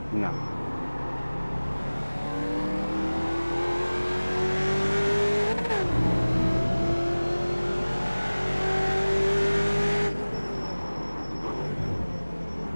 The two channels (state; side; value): inverted; both; correlation -1.00